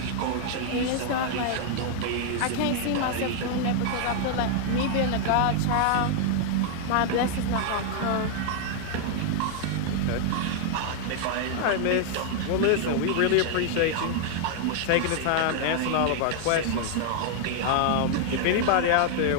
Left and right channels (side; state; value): both; different; correlation 0.00